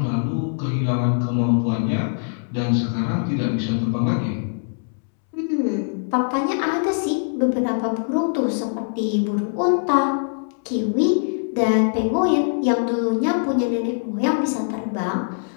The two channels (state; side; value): silent; right; digital silence